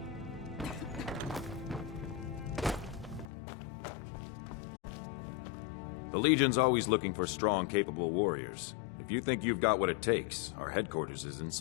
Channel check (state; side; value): drops out; right; at 3.2 s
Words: The Legion's always looking for strong, capable warriors. If you think you've got what it takes, our headquarters is in